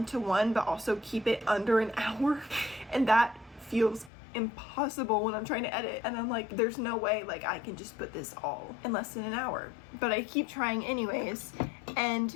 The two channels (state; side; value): drops out; right; at 4.1 s